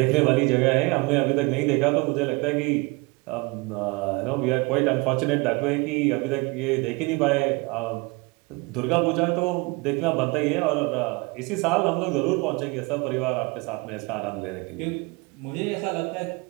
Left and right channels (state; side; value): quieter; left; 26.8 dB